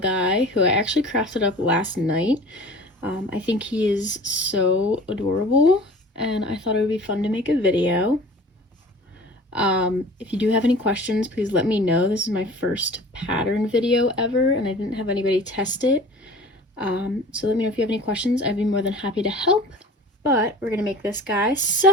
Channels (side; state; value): both; normal; correlation 0.42